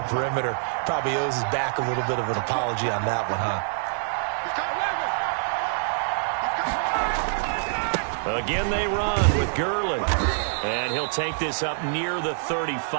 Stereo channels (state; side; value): silent; left; 61 dB below the other